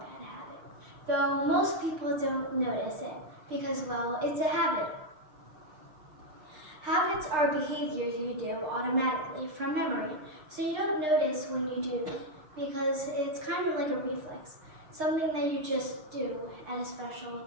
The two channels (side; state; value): left; late; 6.5 ms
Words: habit, though most people don't notice it because, well, it's a habit. Habits are behaviors you do automatically from memory, so you don't notice when you do them because it's kind of like a reflex, something that you just do at a special